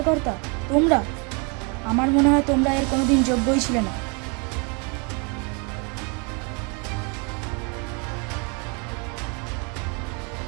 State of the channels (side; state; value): left; quieter; 34.0 dB